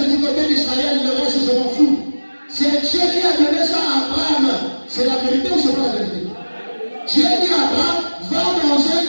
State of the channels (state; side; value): inverted; both; correlation -1.00